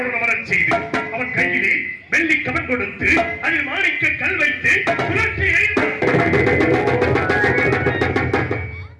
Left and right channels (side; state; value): both; identical; correlation 1.00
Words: அமரச் செய்து அவன் கையிலே வெள்ளி கவன் கொடுத்து அதில் மாணிக்க கல் வைத்து சுழற்சி